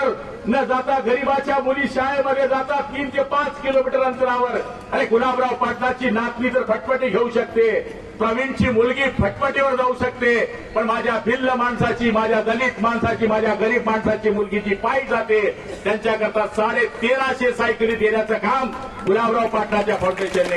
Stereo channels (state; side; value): identical; both; correlation 1.00